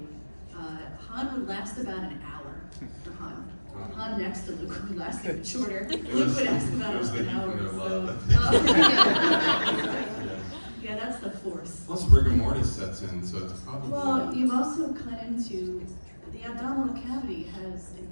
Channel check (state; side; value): inverted; both; correlation -1.00